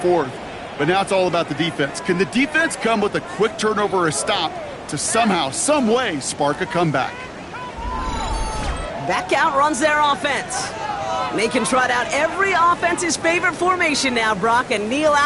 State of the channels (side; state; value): both; identical; correlation 1.00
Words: But now it's all about the defense. Can the defense come with a quick turnover or a stop to somehow, some way, spark a comeback? Back out runs their offense. And they can trot out every offense's favorite formation now, Brock, and kneel